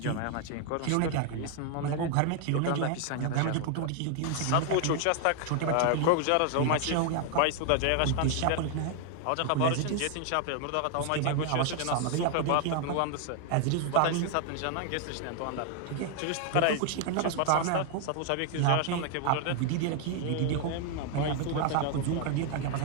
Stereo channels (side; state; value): both; different; correlation 0.00